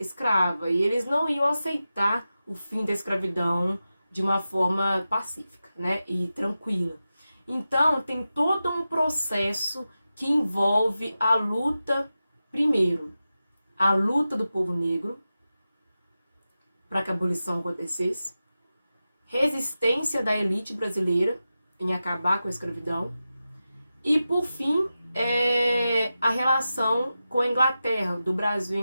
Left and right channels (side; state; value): both; inverted; correlation -0.92